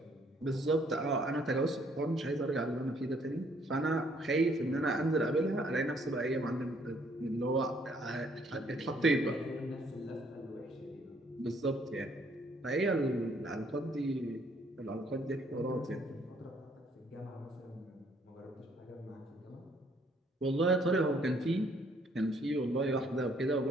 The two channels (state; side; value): normal; both; correlation 0.65